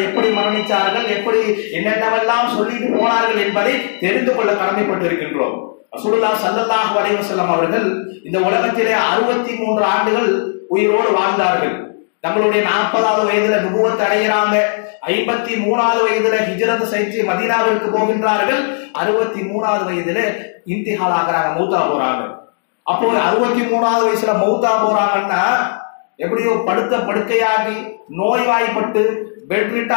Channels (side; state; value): right; silent; digital silence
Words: எப்படி மரணிச்சார்கள், எப்படி என்னென்னவெல்லாம் சொல்லிட்டு போனார்கள் என்பதை தெரிந்து கொள்ள கடமைப்பட்டிருக்கின்றோம். ரசூலுல்லாஹ் ஸல்லல்லாஹு அலைஹி வஸல்லம் அவர்கள் இந்த உலகத்திலே 63 ஆண்டுகள் உயிரோடு வாழ்ந்தார்கள். தங்களுடைய 40வது வயதுல நுபுவத் அடைகிறாங்க. 53வது வயதுல ஹிஜ்ரத் செய்து மதீனாவிற்கு போகின்றார்கள். 63வது வயதுல இன்திஹால் ஆகறாங்க, மௌத்தா போறாங்க. அப்போ 63வது வயசுல மௌத்தா போறாங்கன்னா எப்படியோ படுத்த படுக்கையாகி நோய்வாய்ப்பட்டு பெட்